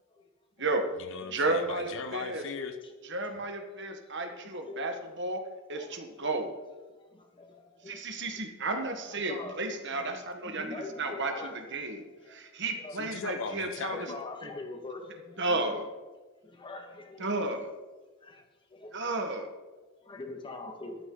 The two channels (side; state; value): both; normal; correlation -0.08